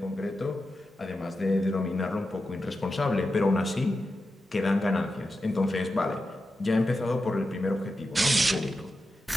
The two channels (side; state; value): both; normal; correlation 0.90